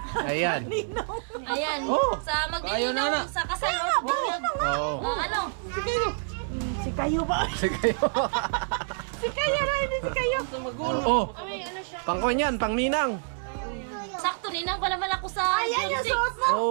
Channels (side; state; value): left; silent; 60 dB below the other